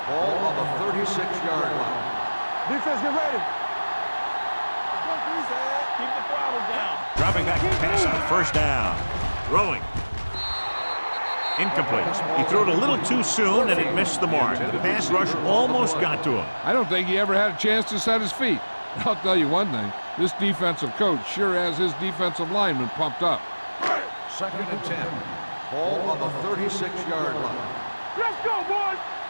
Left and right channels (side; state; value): both; inverted; correlation -1.00